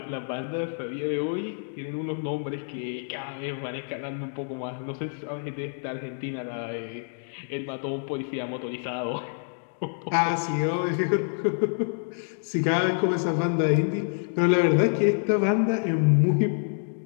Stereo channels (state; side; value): silent; right; digital silence